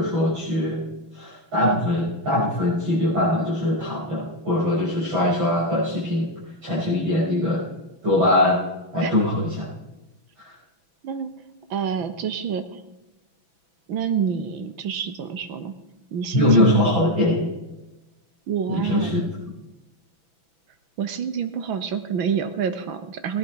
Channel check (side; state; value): left; late; 6.0 ms